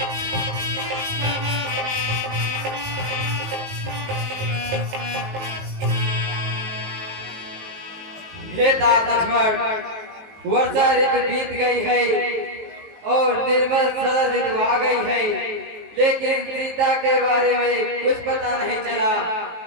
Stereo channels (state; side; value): late; left; 19 ms